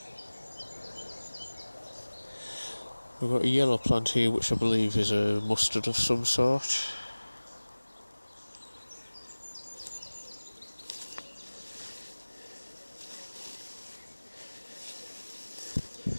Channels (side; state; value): both; inverted; correlation -1.00